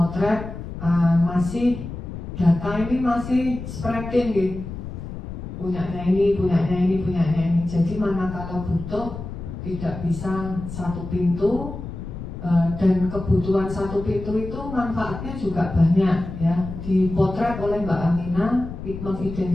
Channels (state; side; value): noise; left; rumble, 9 dB below the sound